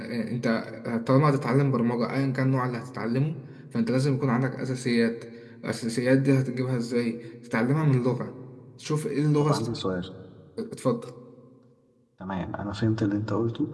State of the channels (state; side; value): identical; both; correlation 1.00